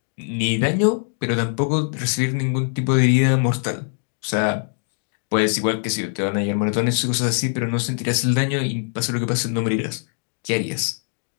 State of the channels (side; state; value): right; silent; 56 dB below the other